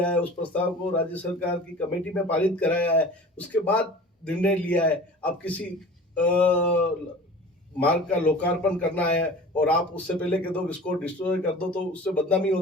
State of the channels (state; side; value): normal; both; correlation 0.40